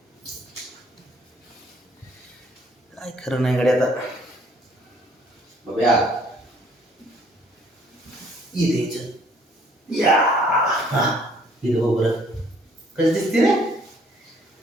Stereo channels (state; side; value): normal; both; correlation 0.61